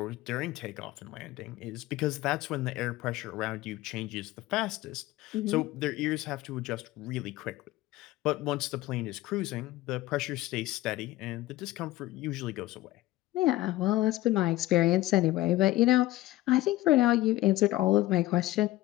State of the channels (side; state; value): right; quieter; 16.9 dB